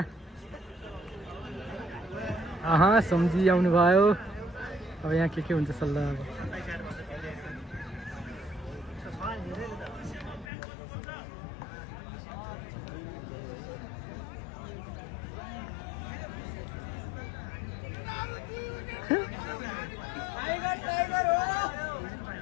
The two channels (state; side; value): drops out; right; at 10.5 s